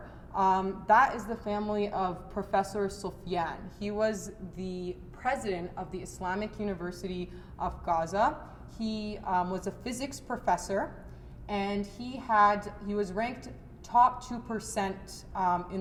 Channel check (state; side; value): identical; both; correlation 1.00